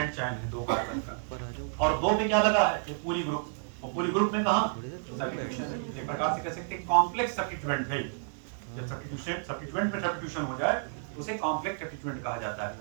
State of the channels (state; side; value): silent; left; 57 dB below the other